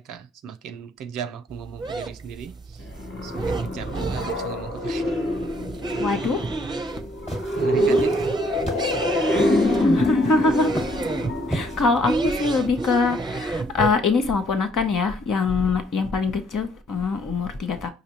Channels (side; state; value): both; normal; correlation 0.66